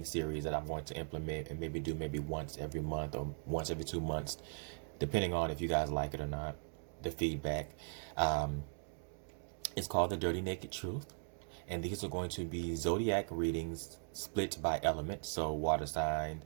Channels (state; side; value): silent; left; digital silence